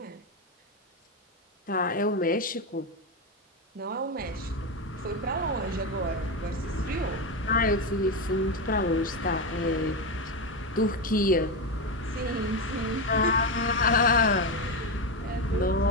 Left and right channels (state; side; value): normal; both; correlation 0.12